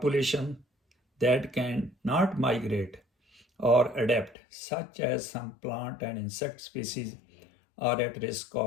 that can not migrate or adapt, such as some plant and insect species, are at risk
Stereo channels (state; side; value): drops out; right; at 4.4 s